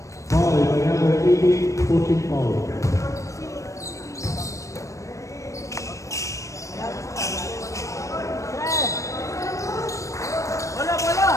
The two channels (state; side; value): late; right; 0.15 ms